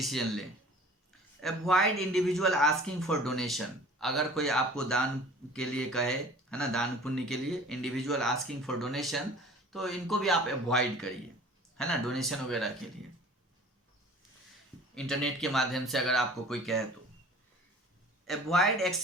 लें। Avoid individual asking for donation, अगर कोई आपको दान के लिए कहे, है ना, दान पुण्य के लिए, इंडिविजुअल आस्किंग फॉर डोनेशन, तो इनको भी आप अवॉइड करिए, है ना, डोनेशन वगैरह के लिए। इंटरनेट के माध्यम से अगर आपको कोई कहे तो अवॉइड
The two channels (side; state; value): both; normal; correlation 0.46